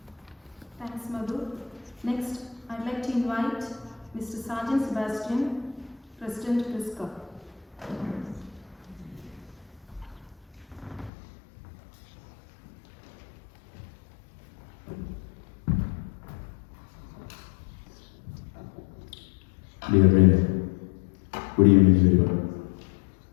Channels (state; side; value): drops out; right; at 11.1 s